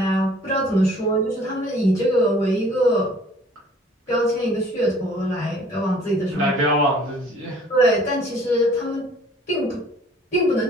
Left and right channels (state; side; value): normal; both; correlation 0.54